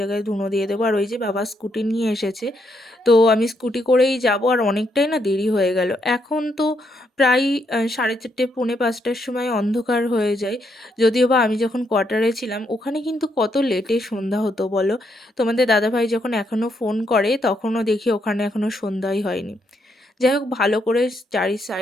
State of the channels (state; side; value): normal; both; correlation 0.76